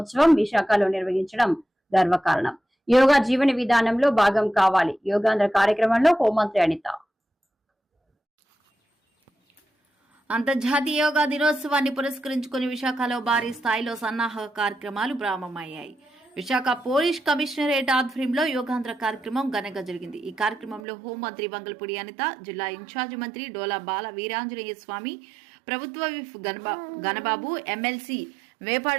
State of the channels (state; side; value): drops out; left; at 20.8 s